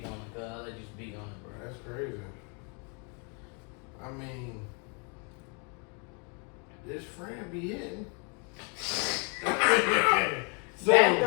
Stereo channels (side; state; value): right; quieter; 35.8 dB